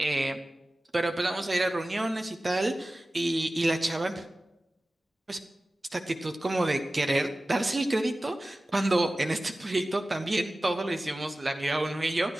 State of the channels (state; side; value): normal; both; correlation 0.96